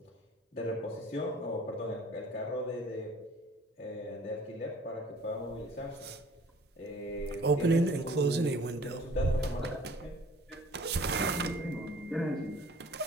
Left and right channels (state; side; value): normal; both; correlation 0.52